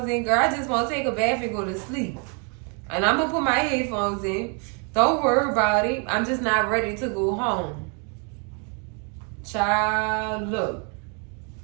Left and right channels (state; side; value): quieter; left; 37.6 dB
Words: in, girl. I just want to take a bath and go to sleep. And I'm going to put my headphones in. Don't worry about it. I'm just not ready to go home. Child, look.